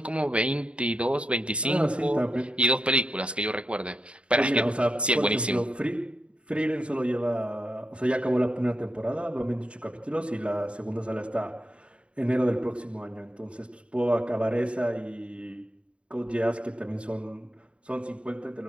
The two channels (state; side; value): late; left; 0.058 ms